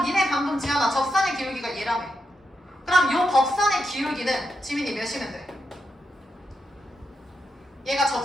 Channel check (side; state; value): both; normal; correlation 0.85